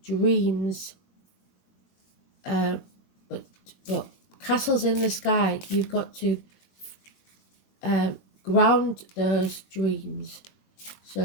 dreams, but castles in the sky. You've got to ground those dreams,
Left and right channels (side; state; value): right; late; 21 ms